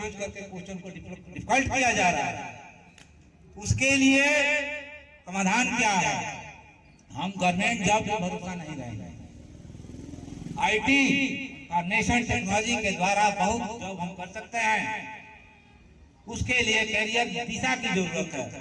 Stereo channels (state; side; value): identical; both; correlation 1.00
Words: करके क्वेश्चन को डिफिकल्ट किया जा रहा है। उसके लिए समाधान क्या है? हम गवर्नमेंट जॉब पर भरोसा नहीं रहेंगे। IT और नेशन टेक्नोलॉजी के द्वारा बहुत जॉब हम कर सकते हैं। उसके लिए कैरियर दिशा की जरूरत है।